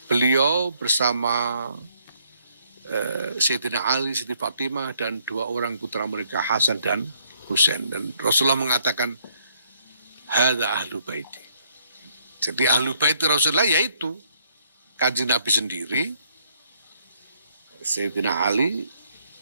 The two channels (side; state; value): both; inverted; correlation -0.69